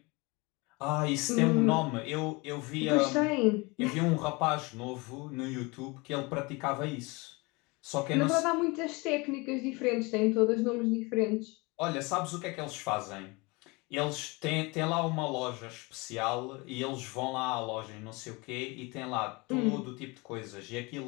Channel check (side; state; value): right; quieter; 26.1 dB